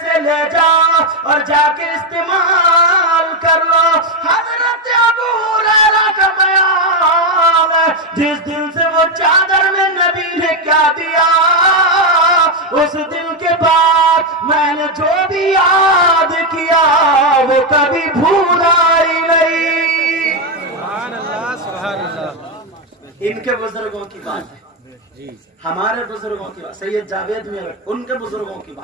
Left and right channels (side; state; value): both; normal; correlation 0.05